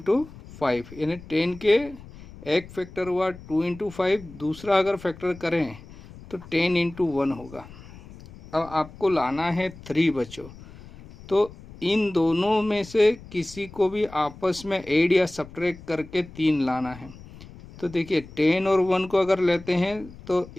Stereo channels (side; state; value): left; noise; rumble, 18 dB below the sound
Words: 5, यानी 10 के एक फैक्टर हुआ 2 इंटू 5, दूसरा अगर फैक्टर करें तो 10 इंटू 1 होगा। अब आपको लाना है 3 बच्चों। तो इन दोनों में से किसी को भी आपस में ऐड या सब्ट्रैक्ट करके 3 लाना है। तो देखिए 10 और 1 को अगर लेते हैं तो